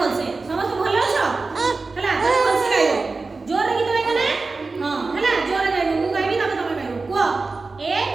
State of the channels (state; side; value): quieter; left; 3.9 dB